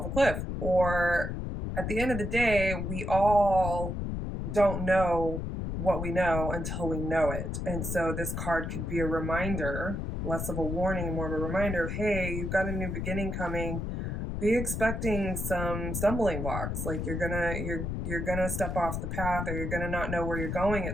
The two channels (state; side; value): noise; left; rumble, 3 dB below the sound